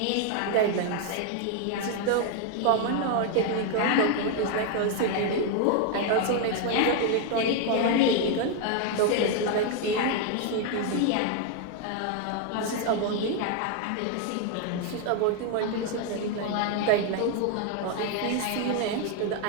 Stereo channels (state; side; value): different; both; correlation 0.01